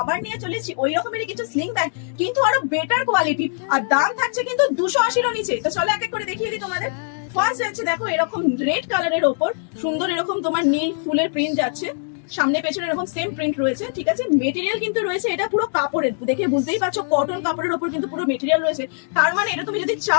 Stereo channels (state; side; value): silent; right; digital silence